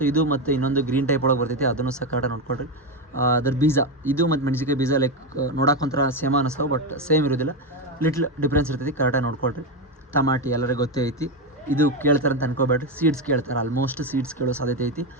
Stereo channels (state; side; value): normal; both; correlation 0.11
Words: ಇದು ಮತ್ತು ಇನ್ನೊಂದು ಗ್ರೀನ್ ಟೈಪ್ ಒಳಗೆ ಬರ್ತೈತಿ, ಅದನ್ನು ಸಹ ಕರೆಕ್ಟಾಗಿ ನೋಡ್ಕೊಡ್ರಿ. ಅದ್ರ ಬೀಜ ಇದು ಮತ್ತು ಮೆಣಸಿಕಾಯಿ ಬೀಜ ಲೈಕ್ ನೋಡೋಕೆ ಒಂಥರ ಸೇಮ್ ಅನ್ನಿಸ್ತಾವೆ, ಬಟ್ ಸೇಮ್ ಇರೋದಿಲ್ಲ, ಲಿಟ್ಲ್ ಡಿಫ್ರೆನ್ಸ್ ಇರ್ತೈತಿ, ಕರೆಕ್ಟಾಗಿ ನೋಡ್ಕೊಳ್ರಿ. ಟಮಾಟಿ ಎಲ್ಲರಿಗೂ ಗೊತ್ತೇ ಐತಿ, ಇದು ಕೇಳ್ತಾರೆ ಅಂತ ಅನ್ಕೋಬೇಡ್ರಿ, ಸೀಡ್ಸ್ ಕೇಳ್ತಾರೆ, ಆಲ್ಮೋಸ್ಟ್ ಸೀಡ್ಸ್ ಕೇಳೋ ಸಾಧ್ಯತೆ ಐತಿ.